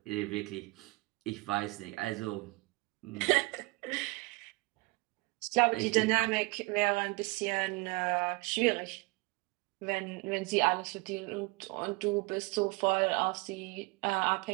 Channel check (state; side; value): quieter; left; 25.5 dB